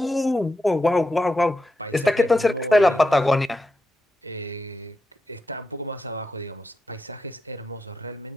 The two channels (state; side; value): normal; both; correlation 0.87